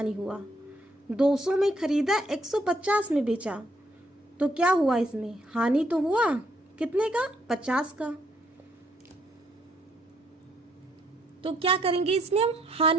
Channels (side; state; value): both; normal; correlation 0.70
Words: हुआ। 200 में खरीदा, 150 में बेचा, तो क्या हुआ, इसमें हानि तो हुआ। कितने का, 50 का। तो क्या करेंगे, इसमें हम